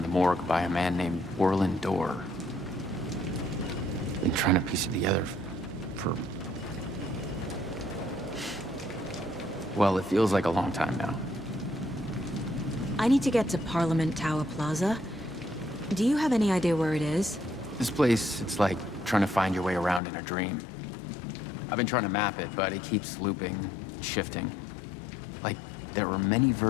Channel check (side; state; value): right; drops out; at 20.0 s